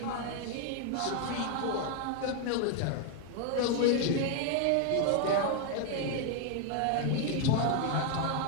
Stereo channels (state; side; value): different; both; correlation 0.00